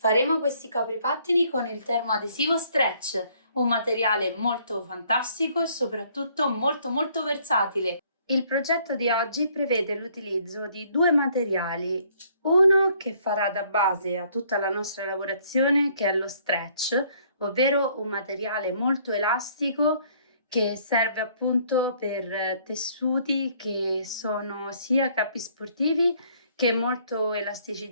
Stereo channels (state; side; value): inverted; both; correlation -0.63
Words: questi copripattini con il termoadesivo Stretch, un materiale molto fantastico e soprattutto molto versatile. Il progetto di oggi prevede l'utilizzo di due materiali, uno che farà da base a tutta la nostra lavorazione, che è lo Stretch, ovvero un materiale molto elastico che serve appunto per tessuti che sono sia capi sportivi che molto